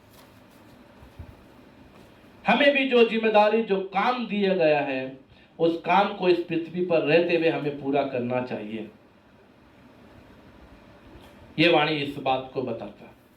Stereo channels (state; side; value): identical; both; correlation 1.00